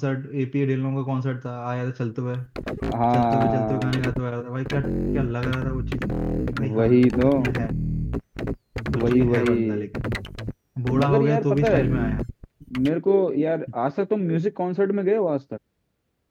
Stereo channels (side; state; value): both; identical; correlation 1.00